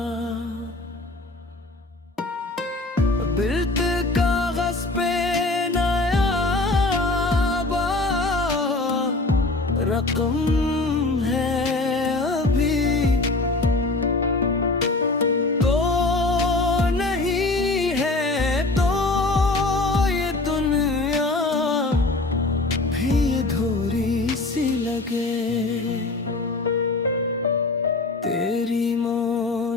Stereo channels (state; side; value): quieter; right; 3.1 dB